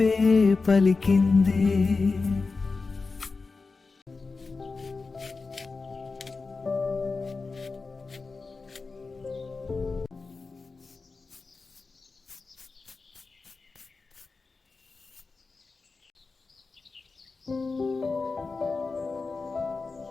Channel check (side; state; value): right; quieter; 4.1 dB